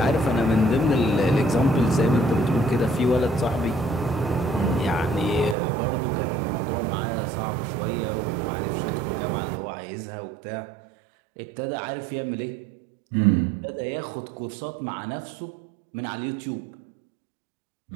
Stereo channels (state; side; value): drops out; left; at 5.6 s